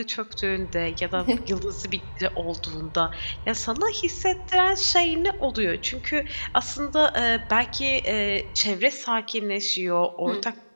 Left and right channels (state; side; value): inverted; both; correlation -1.00